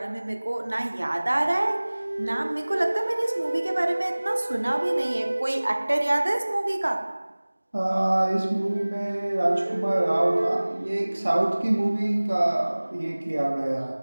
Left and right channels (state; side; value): inverted; both; correlation -1.00